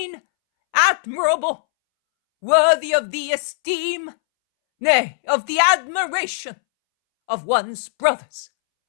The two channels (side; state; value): right; silent; 65 dB below the other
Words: admirable, worthy of the esteem, nay, of the admiration of one's brothers?